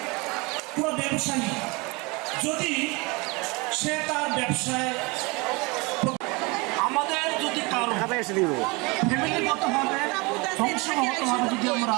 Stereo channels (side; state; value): left; quieter; 26.6 dB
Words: পুরো ব্যবসায়ী যদি সে তার ব্যবসায়, আমাদের যদি কারো ফ্যামিলিগতভাবে বংশগতভাবে যদি আমরা